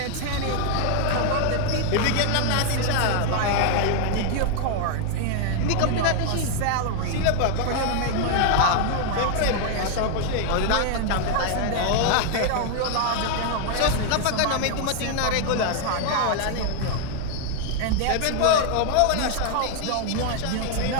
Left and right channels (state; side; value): different; both; correlation 0.00